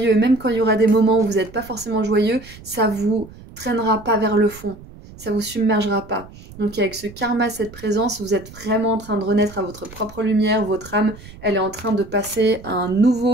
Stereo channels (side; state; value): right; noise; rumble, 18 dB below the sound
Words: Même quand il y aura des moments où vous n'êtes pas forcément joyeux, ça vous traînera pas vers le fond, ça vous submergera pas. Donc avec ce karma, cette présence, vous êtes vraiment en train de renaître à votre propre lumière. Votre âme, elle est en train de passer à un